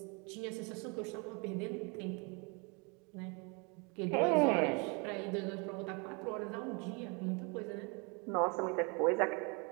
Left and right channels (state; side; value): quieter; left; 31.8 dB